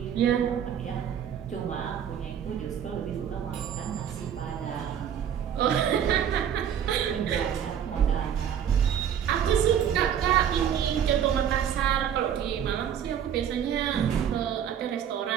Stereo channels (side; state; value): left; quieter; 9.0 dB